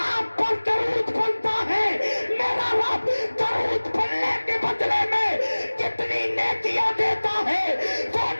پر درود پڑھتا ہے میرا رب درود پڑھنے کے بدلے میں کتنی نیکیاں دیتا ہے وہ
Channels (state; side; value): inverted; both; correlation -1.00